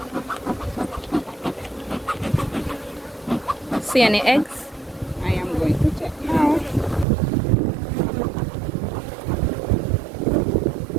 See any eggs? I am going to check now.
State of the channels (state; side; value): drops out; left; at 7.1 s